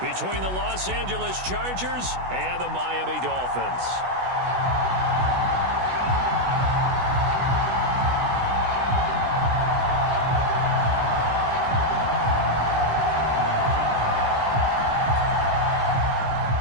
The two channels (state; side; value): late; left; 16 ms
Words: the Los Angeles Chargers and the Miami Dolphins.